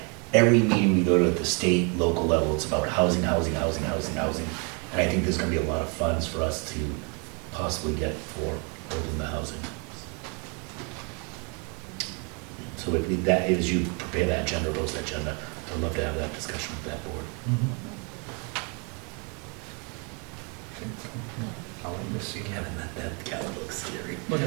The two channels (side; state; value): left; quieter; 34.5 dB